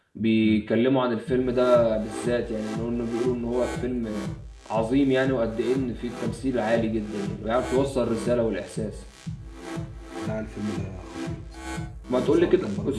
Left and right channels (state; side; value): identical; both; correlation 1.00